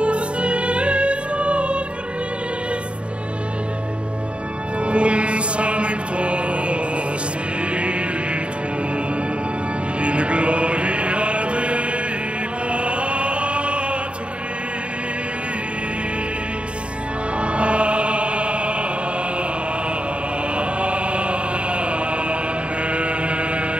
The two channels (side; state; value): left; late; 0.058 ms